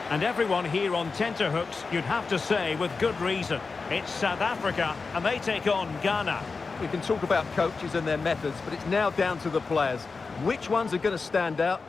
And everyone here on tenterhooks, you'd have to say with good reason. It's South Africa, and they take on Ghana. We can talk about coaches and their methods, but it's now down to the players. Which ones are going to stand out,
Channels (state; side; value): quieter; right; 4.4 dB